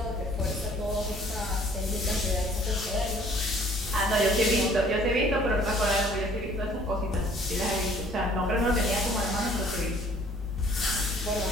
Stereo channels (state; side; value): noise; right; rumble, 16 dB below the sound